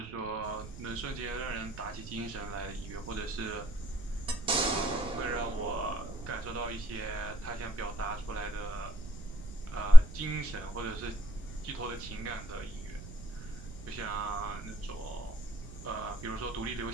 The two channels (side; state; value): right; noise; rumble, 15 dB below the sound